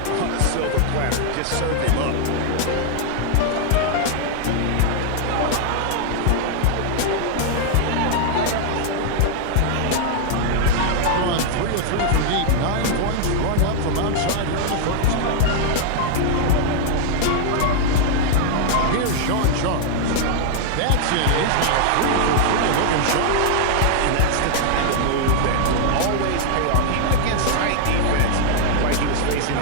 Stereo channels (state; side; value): different; both; correlation -0.01